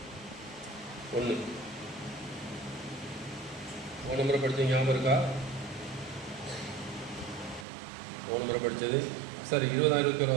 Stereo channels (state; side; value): drops out; left; at 7.7 s